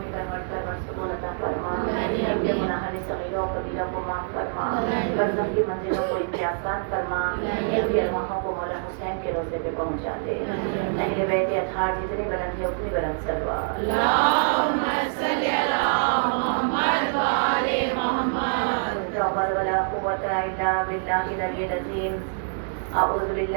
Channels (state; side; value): silent; left; digital silence